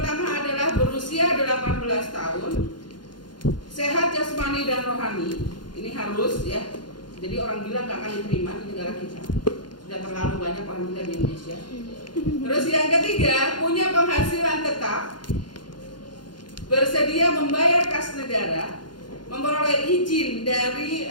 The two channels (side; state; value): right; late; 0.71 ms